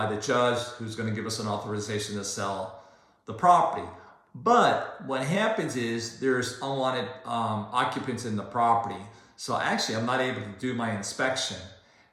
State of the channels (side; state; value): both; identical; correlation 1.00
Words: the judge, who's going to give us an authorization to sell the property. But what happens is there's unwanted occupants in the property. So actually, I'm not able to do my inspection.